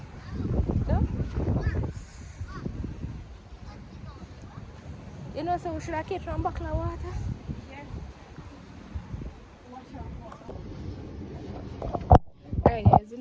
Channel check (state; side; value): identical; both; correlation 1.00